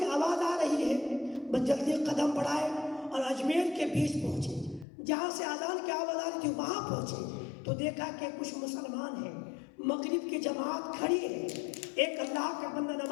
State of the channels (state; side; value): drops out; right; at 4.9 s